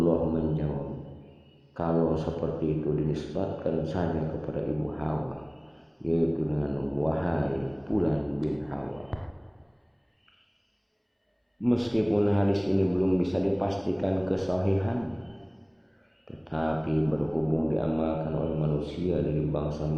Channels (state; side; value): identical; both; correlation 1.00